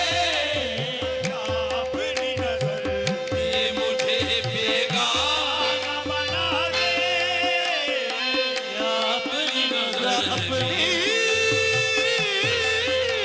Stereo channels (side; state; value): both; identical; correlation 1.00